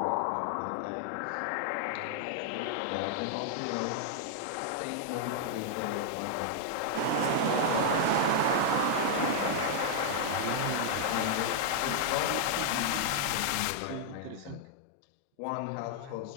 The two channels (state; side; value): different; both; correlation -0.01